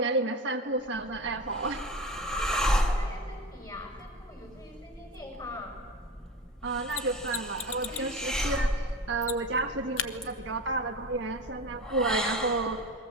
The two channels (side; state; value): both; normal; correlation 0.28